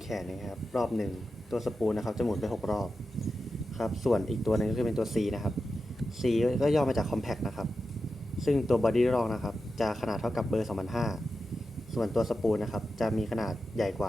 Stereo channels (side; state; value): both; normal; correlation 0.91